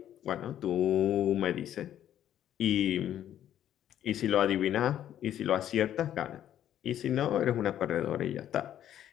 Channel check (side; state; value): right; quieter; 11.1 dB